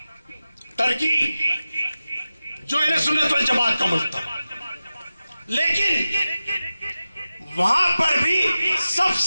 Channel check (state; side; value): inverted; both; correlation -0.94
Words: ٹرکی جو اہل سنت والجماعت کا ملک تھا, لیکن وہاں پر بھی سب